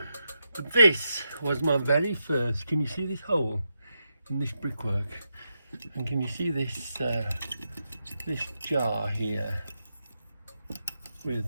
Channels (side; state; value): both; inverted; correlation -0.85